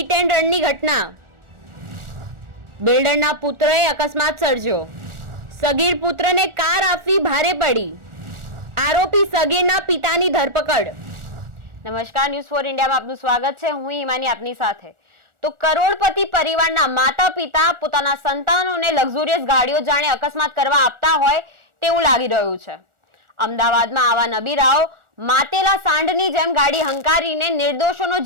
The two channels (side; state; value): left; late; 1.4 ms